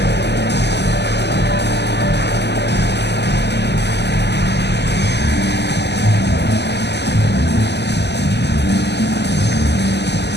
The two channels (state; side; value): late; right; 0.50 ms